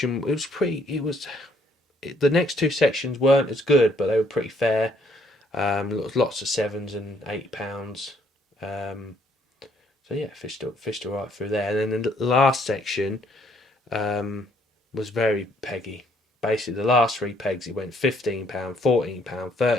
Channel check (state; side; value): normal; both; correlation 0.67